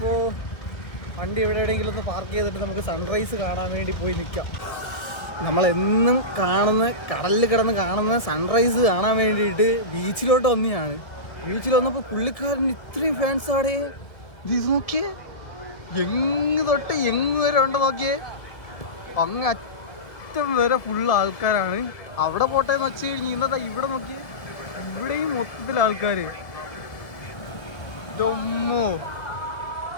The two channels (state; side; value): late; right; 1.9 ms